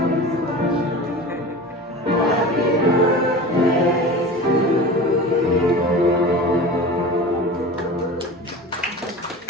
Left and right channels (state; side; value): normal; both; correlation 0.33